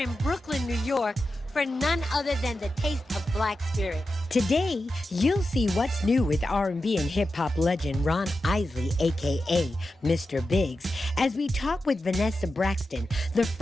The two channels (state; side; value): normal; both; correlation 0.91